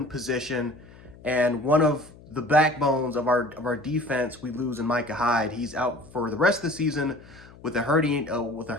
position, and one of the backbones of our defense. We lose in Micah Hyde. He's out for the rest of the season with a herniated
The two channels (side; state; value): left; noise; hum, 21 dB below the sound